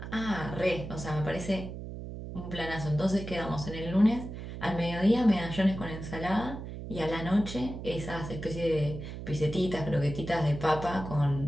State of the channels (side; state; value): right; noise; hum, 9 dB below the sound